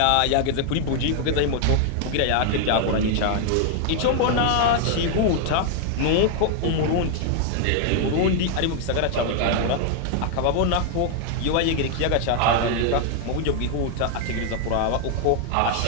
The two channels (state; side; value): different; both; correlation 0.00